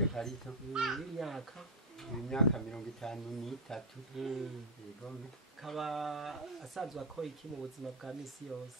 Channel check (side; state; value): both; normal; correlation 0.00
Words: karito. Imyaka 53. Yego. Kaba asanzwe akora iki mu buzima bwa misi